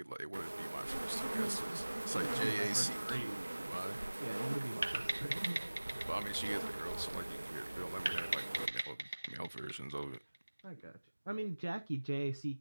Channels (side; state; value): both; inverted; correlation -1.00